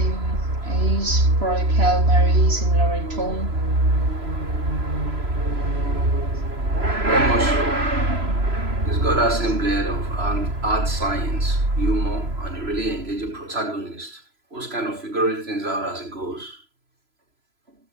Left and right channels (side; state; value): left; late; 3.0 ms